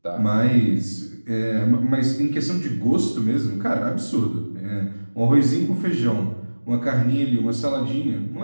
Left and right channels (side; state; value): both; inverted; correlation -1.00